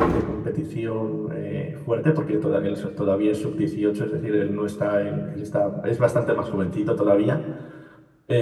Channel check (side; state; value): both; identical; correlation 1.00